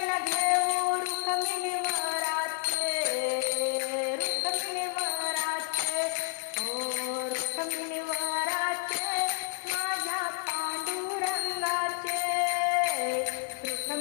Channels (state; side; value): silent; right; digital silence